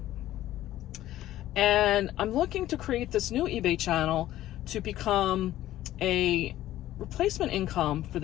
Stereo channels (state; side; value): quieter; right; 14.0 dB